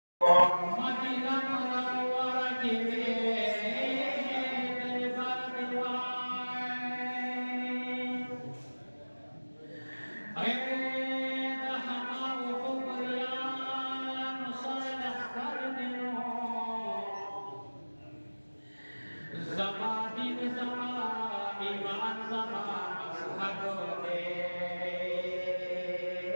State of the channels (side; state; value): both; inverted; correlation -1.00